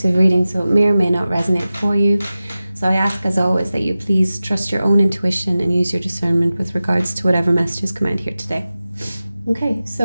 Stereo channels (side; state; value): both; inverted; correlation -0.95